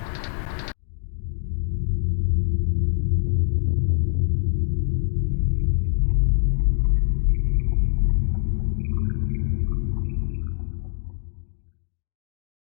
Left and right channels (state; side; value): silent; right; digital silence